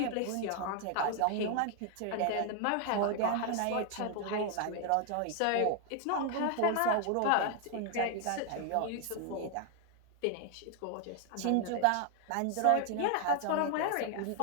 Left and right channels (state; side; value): different; both; correlation 0.00